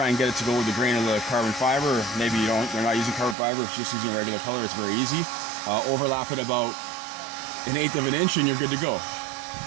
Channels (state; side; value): drops out; left; at 3.4 s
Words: and get it to go with the grain of the carbon fiber. Or maybe you're not using carbon fiber, it's just using a regular color. It's very easy. Overlap it about 1/8 of an inch and you're good to go.